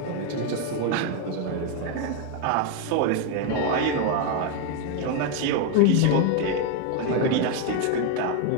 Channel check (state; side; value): different; both; correlation 0.01